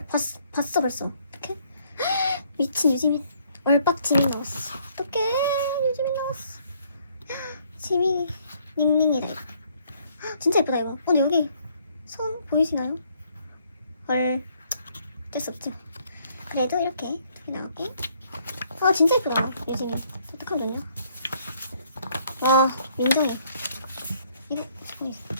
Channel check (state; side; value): inverted; both; correlation -0.66